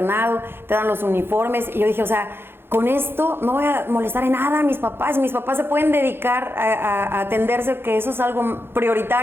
te dan los uniformes. Y yo dije, o sea, con esto no voy a molestar en nada a mis papás. Mis papás se pueden dedicar a atenderse, que eso es algo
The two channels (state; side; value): late; left; 0.11 ms